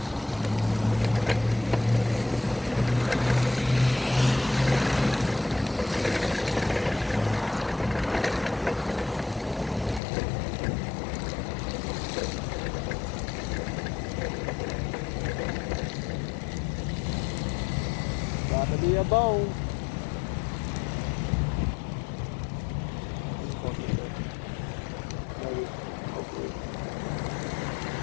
Got to be a bone. Maybe. Hopefully.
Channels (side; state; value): right; drops out; at 10.0 s